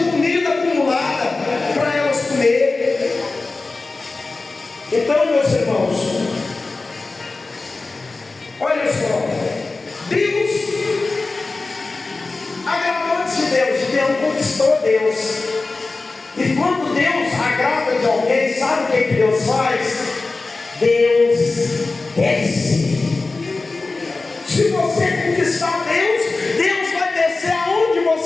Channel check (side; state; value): right; quieter; 3.6 dB